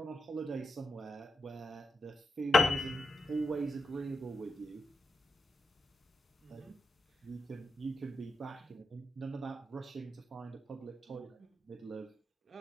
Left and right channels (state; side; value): normal; both; correlation 0.85